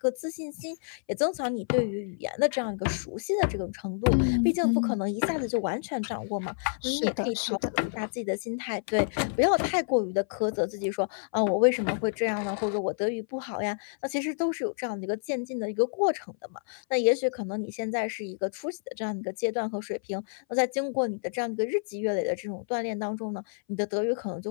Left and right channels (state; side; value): silent; right; 59 dB below the other